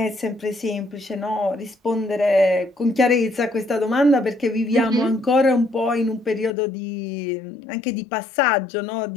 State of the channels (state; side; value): drops out; right; at 6.6 s